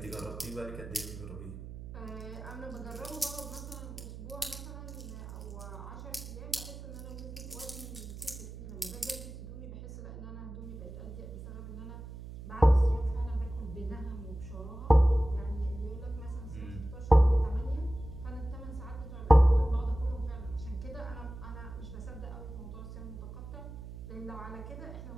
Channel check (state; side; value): noise; right; hum, 11 dB below the sound